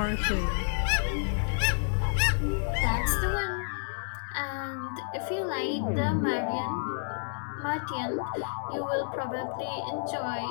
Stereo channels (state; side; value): silent; right; 58 dB below the other